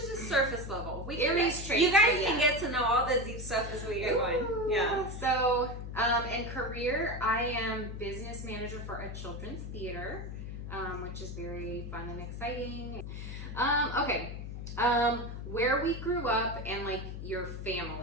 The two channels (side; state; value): left; noise; hum, 7 dB below the sound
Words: just surface level. Aries traits. You guys can get to know all the deep stuff as we go on. Yeah. So, in career, I am business manager for a children's theater, which is very fun and exciting. Okay. Where we grew up and like your